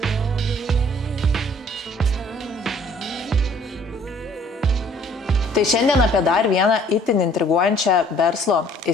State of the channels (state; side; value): normal; both; correlation 0.57